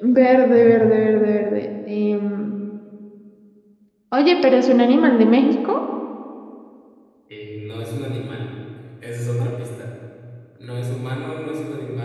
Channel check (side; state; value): both; identical; correlation 1.00